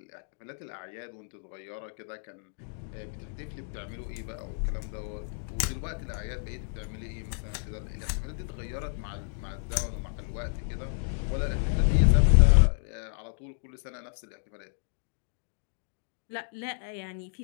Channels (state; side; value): silent; right; digital silence